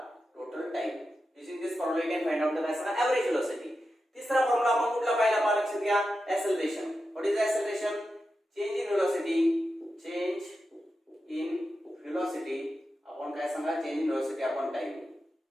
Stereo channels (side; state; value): both; normal; correlation 0.90